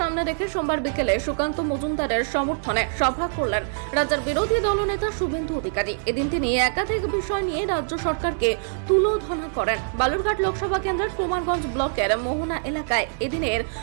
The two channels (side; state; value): left; silent; digital silence